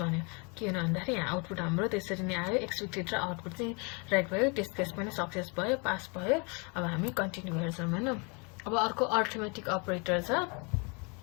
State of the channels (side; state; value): right; quieter; 32.7 dB